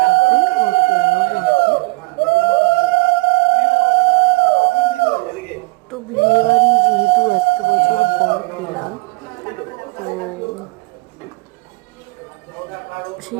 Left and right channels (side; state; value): left; quieter; 25.6 dB